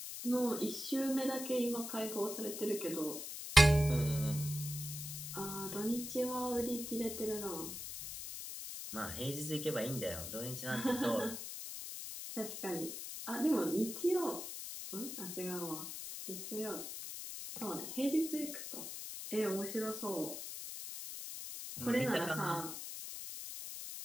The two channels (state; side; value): noise; left; hiss, 7 dB below the sound